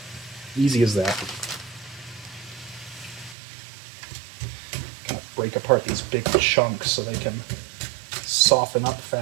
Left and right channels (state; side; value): drops out; left; at 3.4 s